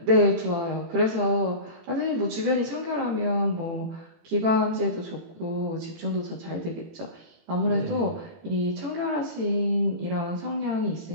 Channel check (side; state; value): left; late; 18 ms